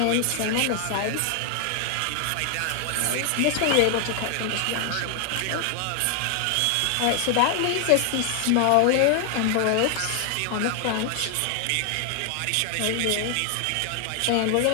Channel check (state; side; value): different; both; correlation 0.00